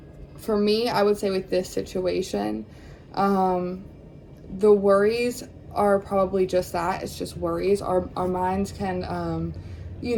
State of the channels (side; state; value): both; identical; correlation 1.00